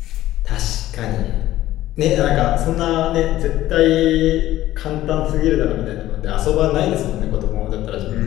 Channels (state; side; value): quieter; right; 14.7 dB